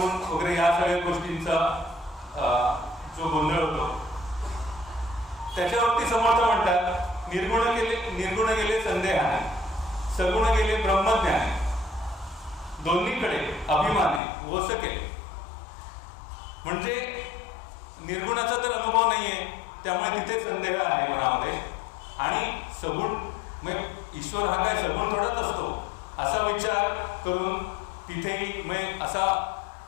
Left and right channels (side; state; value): right; drops out; at 14.2 s